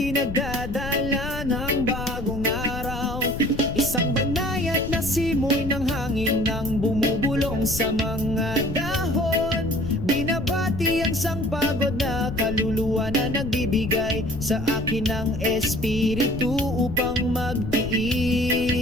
nagdadala ng bagong araw. Isang banayad na simoy ng hangin nang bumubulong sa mga dahon. Binabati ang sangpagod na kaluluwa na nagbibigay sa akin ng espiritu upang magtiis.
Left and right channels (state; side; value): noise; left; rumble, 6 dB below the sound